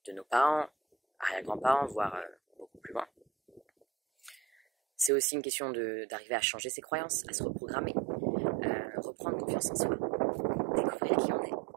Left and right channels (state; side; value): drops out; left; at 5.1 s